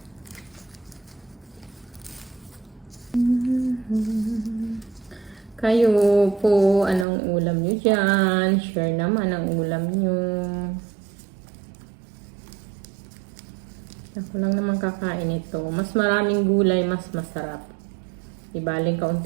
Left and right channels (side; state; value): left; drops out; at 7.1 s